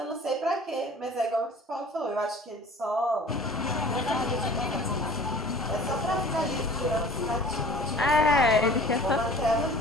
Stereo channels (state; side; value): normal; both; correlation 0.46